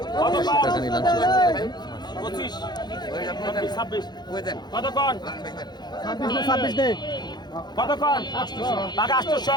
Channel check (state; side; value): late; right; 0.21 ms